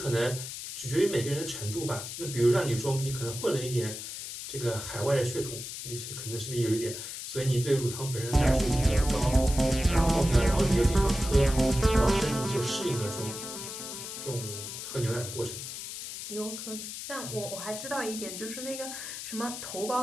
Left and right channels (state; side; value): noise; left; hiss, 8 dB below the sound